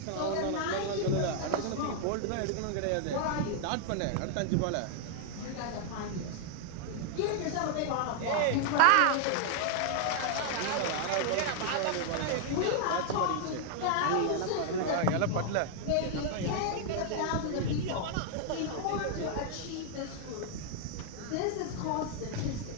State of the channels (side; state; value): both; different; correlation 0.00